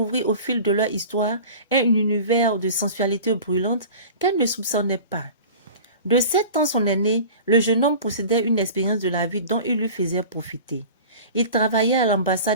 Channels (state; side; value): inverted; both; correlation -0.39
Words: au fil de leur histoire un univers de sensualité brûlante qu'elle ne soupçonnait pas. De 7 ans son aîné, le jeune homme possédait une expérience de la vie dont il lui faisait profiter. Il travaillait à l'ambassade